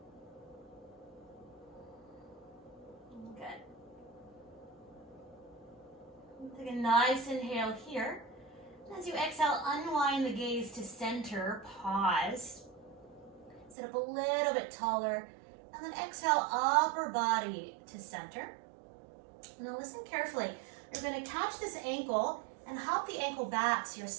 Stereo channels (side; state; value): left; drops out; at 13.8 s